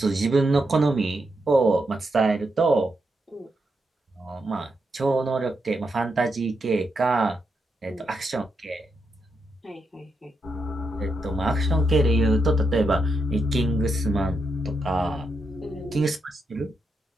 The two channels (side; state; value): both; normal; correlation 0.83